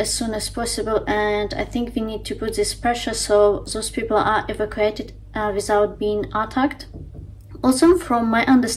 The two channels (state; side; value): identical; both; correlation 1.00